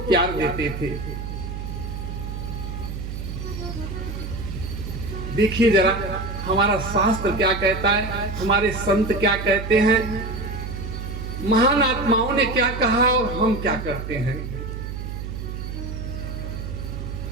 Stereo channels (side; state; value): right; noise; hum, 6 dB below the sound